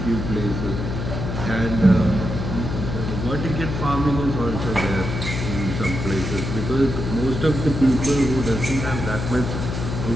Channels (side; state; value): left; noise; hum, 4 dB below the sound